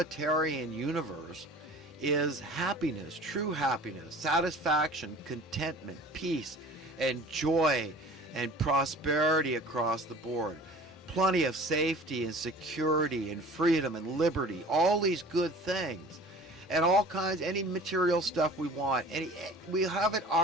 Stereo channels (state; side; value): normal; both; correlation 0.43